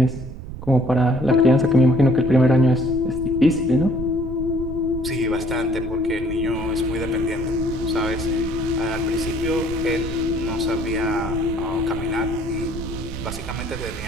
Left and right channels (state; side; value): noise; right; rumble, 9 dB below the sound